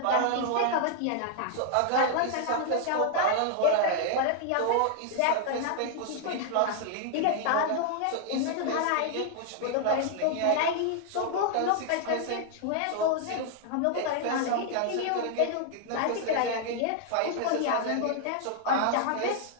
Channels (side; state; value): both; different; correlation 0.00